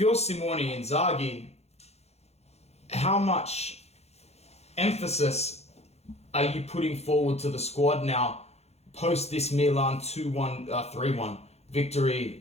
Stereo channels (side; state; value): right; late; 0.31 ms